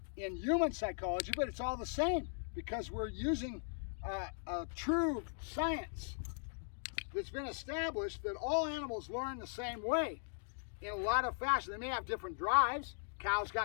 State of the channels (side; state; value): right; silent; digital silence